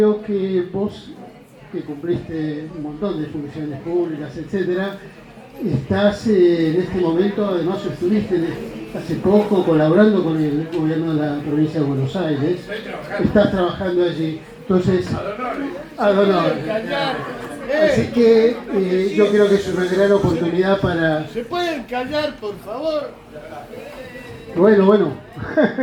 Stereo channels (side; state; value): both; identical; correlation 1.00